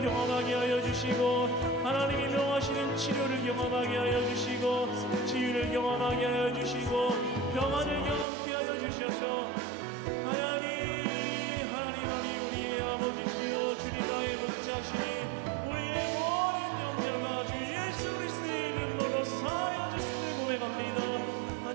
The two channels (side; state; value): left; drops out; at 8.2 s